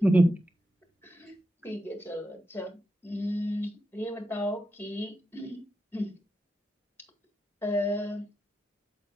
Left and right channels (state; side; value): normal; both; correlation 0.87